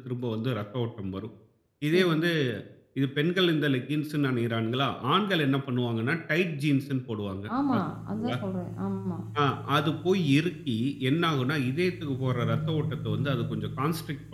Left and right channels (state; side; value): identical; both; correlation 1.00